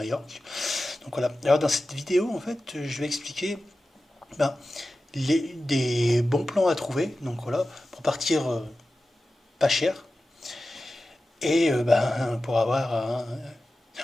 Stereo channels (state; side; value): normal; both; correlation 0.94